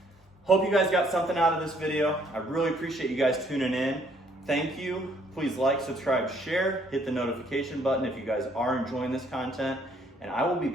Hope you guys got something out of this video. I really appreciate you guys tuning in. Thank you. Please like, subscribe, share, hit the notification button if you guys are enjoying this content, and I will be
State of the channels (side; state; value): both; normal; correlation 0.65